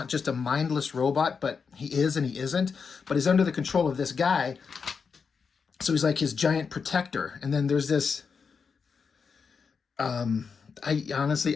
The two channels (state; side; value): quieter; right; 5.6 dB